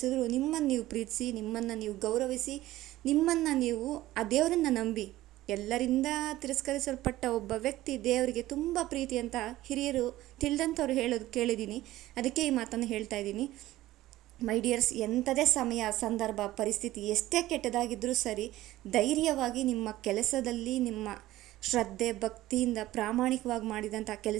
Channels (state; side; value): quieter; left; 16.0 dB